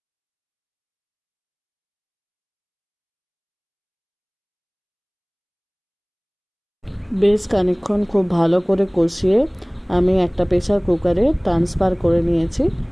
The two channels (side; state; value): both; identical; correlation 1.00